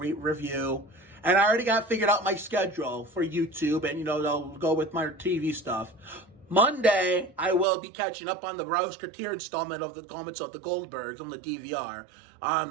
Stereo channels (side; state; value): left; drops out; at 7.7 s